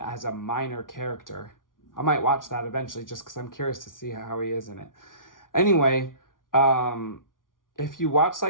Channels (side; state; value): right; late; 0.89 ms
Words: a minor character. I might watch that eventually just because I'm curious to see how he is in it. Anyway, if you watch